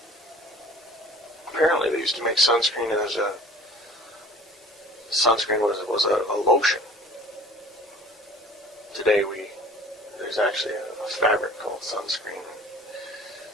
Apparently they used to make sunscreen as sunscreen was a lotion. Today there's actually a fabric called sunscreen.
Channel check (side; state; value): both; normal; correlation 0.47